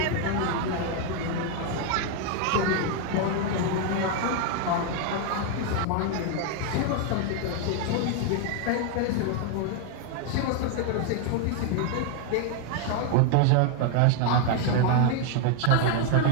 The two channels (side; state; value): both; different; correlation 0.01